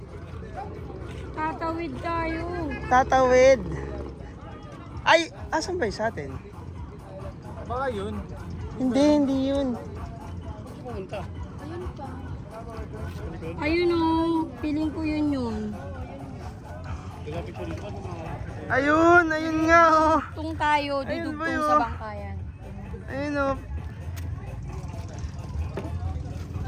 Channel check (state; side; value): identical; both; correlation 1.00